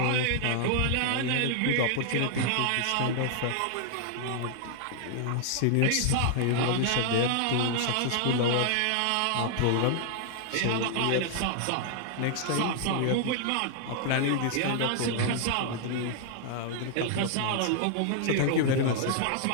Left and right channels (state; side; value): different; both; correlation 0.00